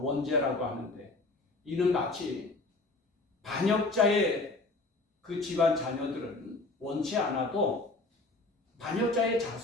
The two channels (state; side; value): quieter; right; 3.2 dB